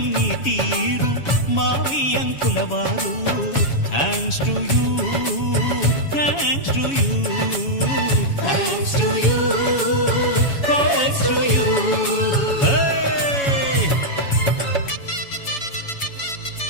నీ తీరు మావియంకుల వారు thanks to you thanks to you thanks to you thanks to you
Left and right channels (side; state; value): right; late; 7.2 ms